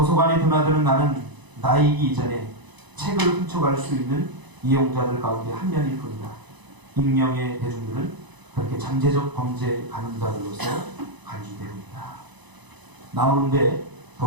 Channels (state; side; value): late; left; 1.0 ms